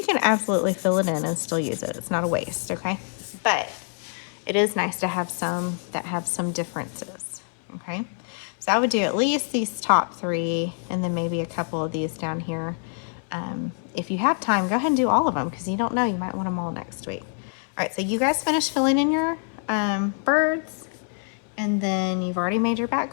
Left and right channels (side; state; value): right; silent; 57 dB below the other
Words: can absolutely fill it in and still use it. It's not a waste, okay? But it is nice to have some that have some differences, okay? So I would do at least these top 3 and then maybe a couple of these down here. If you have time, go ahead and do all of them, because you don't know, you might want them all next week. All right, so you guys finish filling in your birds, and then you've already made your